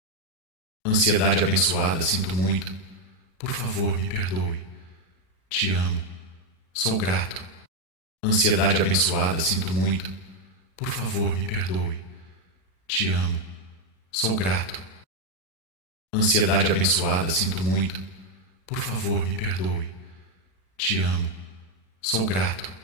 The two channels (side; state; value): right; late; 3.9 ms